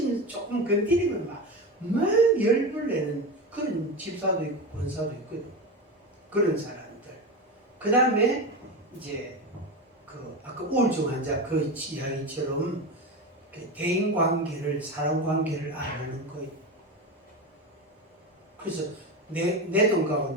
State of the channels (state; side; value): normal; both; correlation 0.21